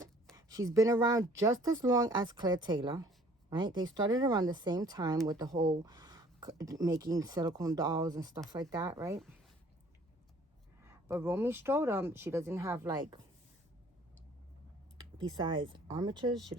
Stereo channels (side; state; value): both; normal; correlation 0.55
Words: She's been around just as long as Claire Taylor. right? They started around the same time with the whole making silicone dolls and stuff like that, right? But Romy Strudom, she doesn't have like, besides armatures, she